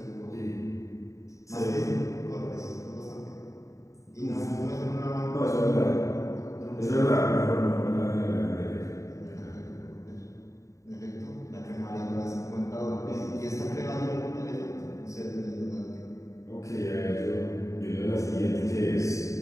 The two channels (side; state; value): right; late; 0.15 ms